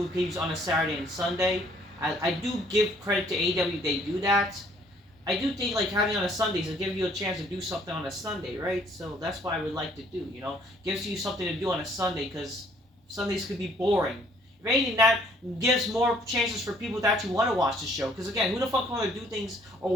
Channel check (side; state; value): both; normal; correlation 0.61